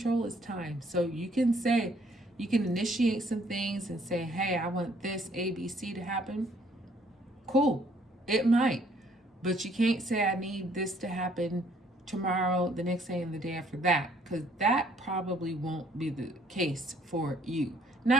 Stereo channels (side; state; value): both; normal; correlation 0.63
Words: is time. So you can say, you can initiate some things and say, hey, I want this ABC to happen. Cool. It might. But you can't say, I need this to happen tomorrow, the next day, and the day after that, because that probably won't be the case for you.